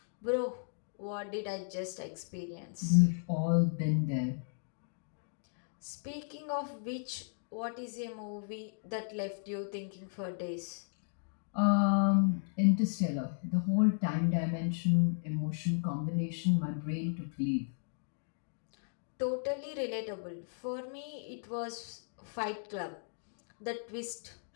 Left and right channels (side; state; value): right; silent; digital silence